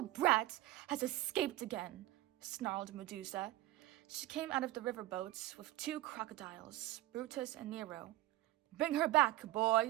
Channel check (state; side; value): quieter; left; 16.1 dB